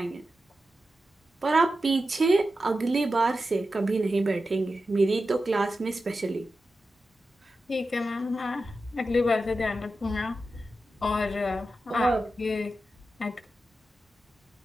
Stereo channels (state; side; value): normal; both; correlation 0.91